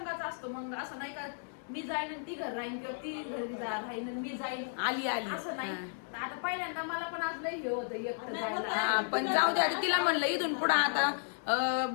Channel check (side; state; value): right; silent; digital silence